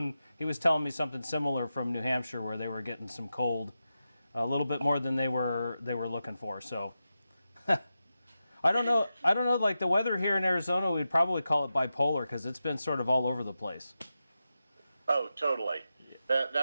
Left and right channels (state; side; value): inverted; both; correlation -0.91